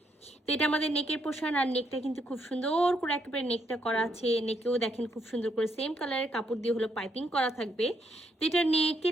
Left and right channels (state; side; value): normal; both; correlation 0.75